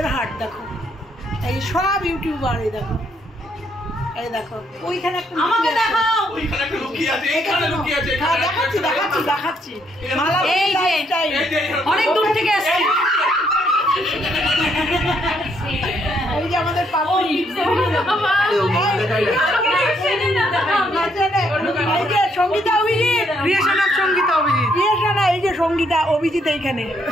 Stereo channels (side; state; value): both; normal; correlation 0.72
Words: হাট দেখো, এই সব ইউটিউবার, এই দেখো, এই দেখো ওইখানে একটা আমাকে দেখাও, ওইখানে একটা লুকিয়ে আছে, এখানে লুকিয়ে আছে, দেখাচ্ছি দেখাচ্ছি দেখাচ্ছি। মালা এই যে অনেক দূর থেকে আসছে, এই যে আমাদের পাপড়ি, এই যে Sangeeta Abhijit, creation of Sangeeta Abhijit, creation, এই যে সঙ্গীতা অভিজিৎ এইখানে,